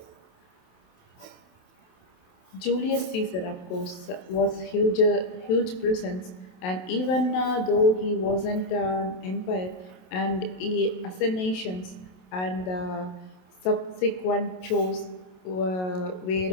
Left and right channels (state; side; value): late; right; 27 ms